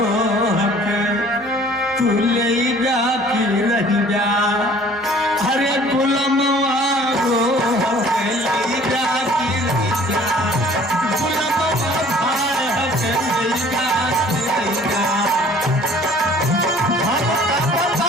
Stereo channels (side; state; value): both; normal; correlation 0.52